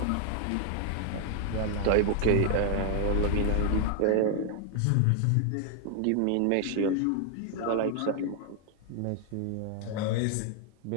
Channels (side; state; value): both; different; correlation 0.00